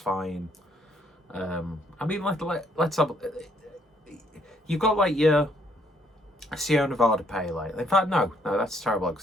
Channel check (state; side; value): normal; both; correlation 0.68